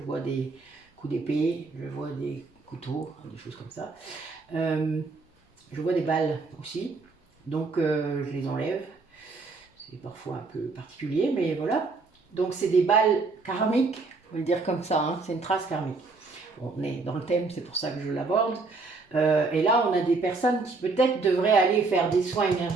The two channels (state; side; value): quieter; left; 3.9 dB